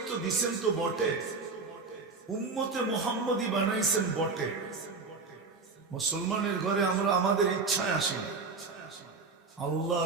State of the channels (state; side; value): quieter; left; 4.3 dB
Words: দিছেন তো বটে, উম্মতে মুহাম্মদী বানাইছেন বটে। মুসলমানের ঘরে আমরা আমাদের ইচ্ছায় আসি না,